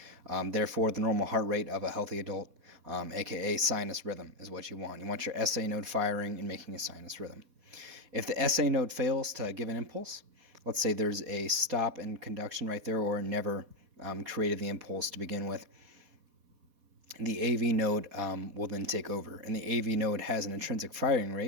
Therefore, the normal heart rate of a healthy adult, aka sinus rhythm, is what you want. You want your SA node firing and making a sinus rhythm. If the SA node fails to give an impulse, let's say there's a stop in conduction right there or never created the impulse to begin with, the AV node will then take over. And the AV node has an intrinsic firing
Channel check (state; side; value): late; left; 4.2 ms